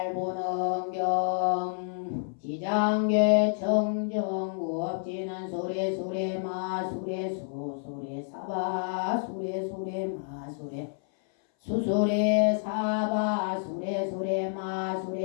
보능경 지장계 청정구 업지는 소래 소래 마 소래 소 소래 사바 소래 소래 마 소래 수소래 사바 소래 소래 마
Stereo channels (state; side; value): silent; right; 59 dB below the other